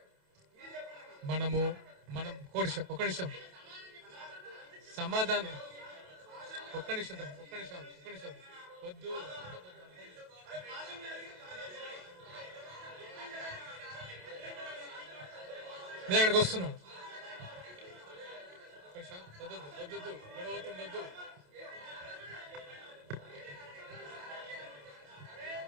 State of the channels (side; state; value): left; late; 28 ms